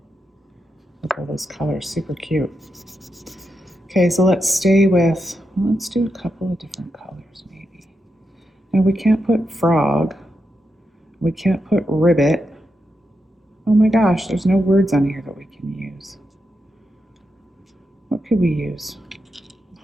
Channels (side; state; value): both; normal; correlation 0.86